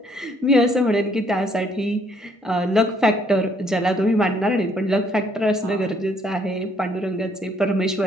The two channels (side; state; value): both; normal; correlation 0.66